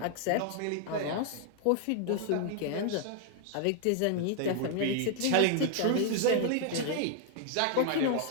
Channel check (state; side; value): different; both; correlation 0.00